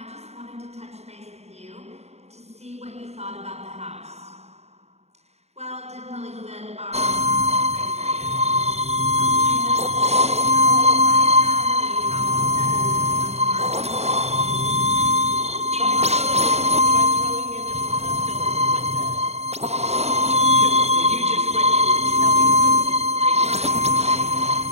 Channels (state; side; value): late; left; 0.31 ms